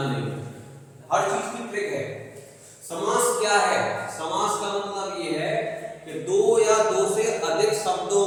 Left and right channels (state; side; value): identical; both; correlation 1.00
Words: में, हर चीज की ट्रिक है। समास क्या है? समास का मतलब ये है कि दो या दो से अधिक शब्दों